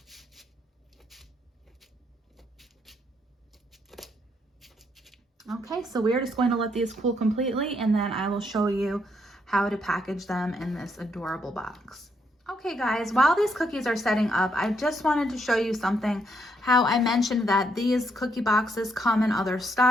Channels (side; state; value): both; normal; correlation 0.75